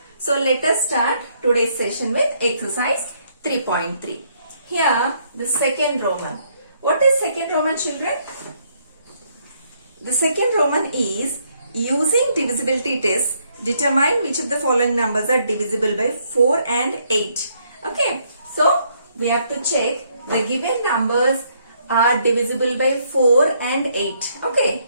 So let us start today's session with exercise 3.3. Here, the second Roman. What is second Roman, children? The second Roman is using divisibility test, determine which of the following numbers are divisible by 4 and 8. Okay, so we have to check the given numbers are divisible by 4 and 8. Okay,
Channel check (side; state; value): both; inverted; correlation -0.71